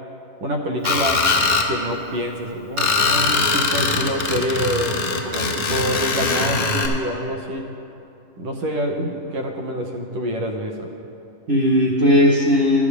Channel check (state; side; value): late; left; 10 ms